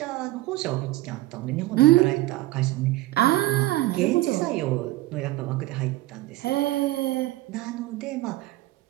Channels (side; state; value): left; quieter; 17.4 dB